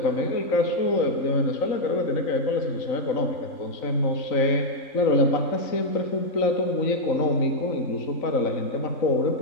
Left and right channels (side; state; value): right; late; 3.9 ms